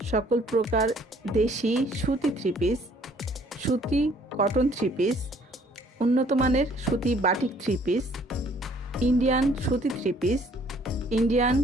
সকল প্রকার দেশি সুতি থ্রি পিস, সুতি কটন থ্রি পিস, উন্নত মানের সুতি বাটিক থ্রি পিস, ইন্ডিয়ান সুতি থ্রি পিস, ইন্ডিয়ান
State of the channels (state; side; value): normal; both; correlation 0.60